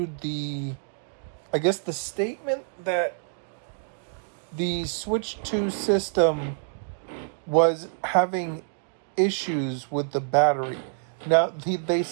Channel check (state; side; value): silent; left; digital silence